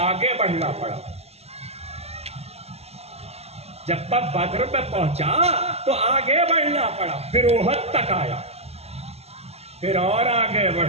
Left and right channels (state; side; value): late; left; 0.30 ms